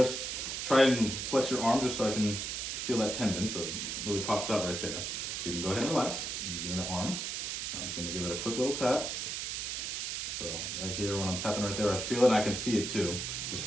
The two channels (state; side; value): noise; right; hiss, 3 dB below the sound